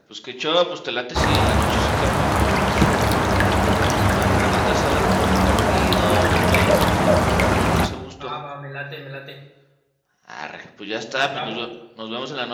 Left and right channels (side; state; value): both; identical; correlation 1.00